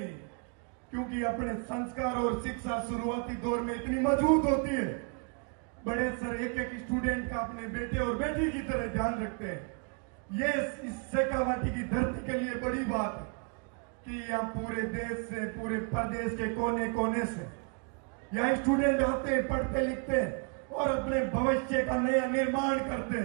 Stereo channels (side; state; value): left; quieter; 38.0 dB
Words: क्योंकि अपने संस्कार और शिक्षा शुरुआती दौर में इतनी मजबूत होती है। बड़े सर एक एक स्टूडेंट का अपने बेटे और बेटी की तरह ध्यान रखते हैं। ये इस शेखावाटी की धरती के लिए बड़ी बात है कि यहाँ पूरे देश से, पूरे प्रदेश के कोने कोने से यहाँ स्टूडेंट आते हैं, पढ़ते लिखते हैं और अपने भविष्य का नया निर्माण करते